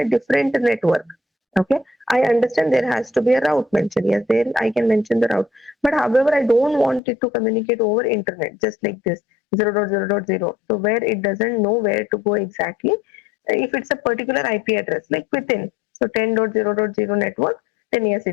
different network. Okay, I understand there has to be a route mentioned. Yes, there I can mention the route. But however, I don't want it to communicate over internet, just like this 0.0.0. So where it doesn't know where to go exactly, if it's a particular IP address, like within, so 10.0.0 network, then yes,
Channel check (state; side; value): drops out; right; at 7.0 s